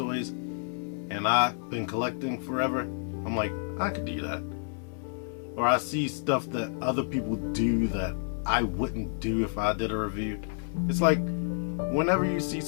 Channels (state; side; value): silent; right; digital silence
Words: and I've been collecting forever. I'm like, I could do that. Or I see stuff that other people do that I wouldn't do if I did a review. It's like, whenever you see